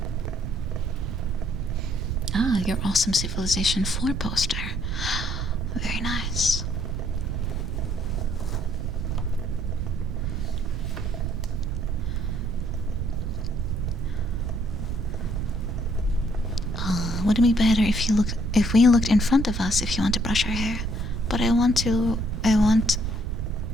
Ah, your awesome Civilization 4 poster. Very nice. Would it be better if we looked in front of us if you want to brush our hair? But I want to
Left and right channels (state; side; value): noise; right; rumble, 2 dB below the sound